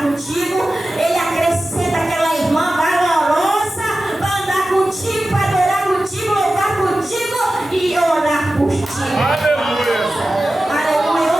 contigo. Ele acrescenta aquela irmã valorosa para andar contigo, para adorar contigo, louvar contigo e orar por ti. Aleluia. Aleluia.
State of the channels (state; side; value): normal; both; correlation 0.94